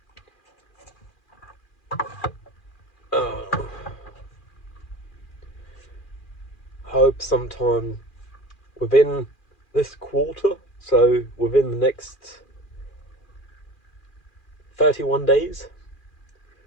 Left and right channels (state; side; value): late; right; 2.4 ms